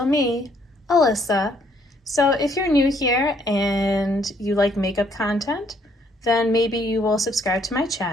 me, Alyssa. So if you're new here and you like makeup content, then maybe you will subscribe to my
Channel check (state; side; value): normal; both; correlation 0.67